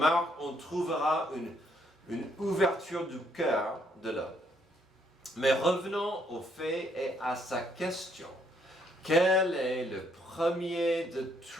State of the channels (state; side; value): normal; both; correlation 0.70